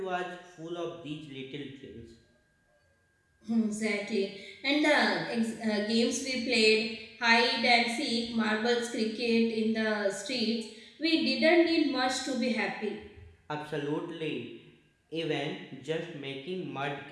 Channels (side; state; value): both; identical; correlation 1.00